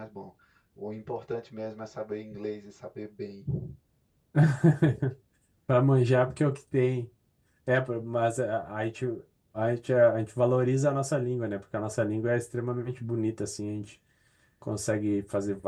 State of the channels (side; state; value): both; identical; correlation 1.00